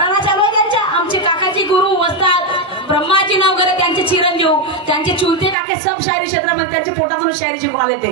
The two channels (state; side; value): drops out; left; at 5.6 s